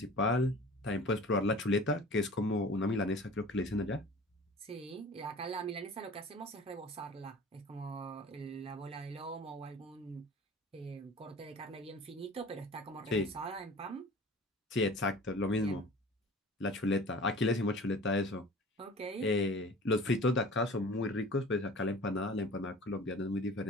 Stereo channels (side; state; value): both; normal; correlation 0.42